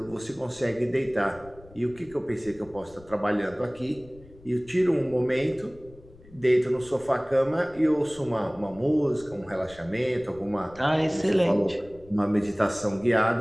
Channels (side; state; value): left; noise; rumble, 23 dB below the sound